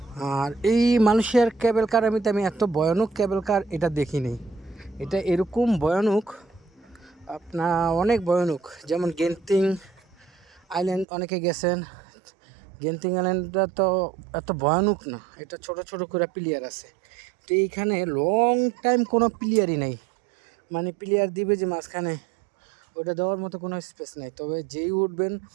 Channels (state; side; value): drops out; left; at 11.1 s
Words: আর এই মালয়েশিয়ার কেবল কার আমি এত ভয়ানক কেবল কার এটা দেখিনি। এটা এরকম ভয়ানক, আপনার অনেক ভয়ানক। যেমন গেন্তিং আইল্যান্ড অনেকে গেছেন, গেন্তিং আইল্যান্ডটা তো এত ভয়ানক না, এটা ছোট ছোট করে প্লেয়ার আছে। তো এইখানে লং টাইম কোনো প্লেয়ারই নেই, মানে প্লেয়ার দিবে যে মাঝখানে, ওটা দেওয়ার মতো কোনো স্পেস নেই। তবে যেই উঠবেন,